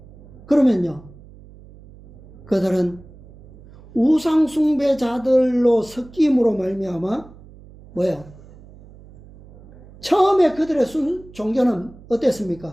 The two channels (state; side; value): noise; right; hum, 22 dB below the sound